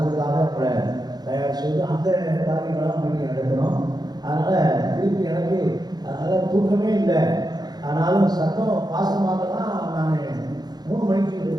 அதுக்காக அவங்கள தயார் செய்து அந்த காரியங்களாம் மீட்டிங் நடத்தணும். அதனால் திருப்பி எனக்கு அதனால் தூக்கமே இல்லை. ஆனாலும் சத்தம் பாசமாக தான் நான் 3 மணிக்கு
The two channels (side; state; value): left; late; 0.19 ms